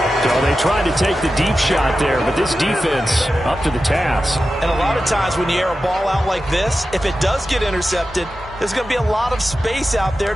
So they tried to take the deep shot there, but this defense up to the task. And a lot of times when you air a ball out like this, if it does get intercepted, there's going to be a lot of space out there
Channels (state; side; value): normal; both; correlation 0.92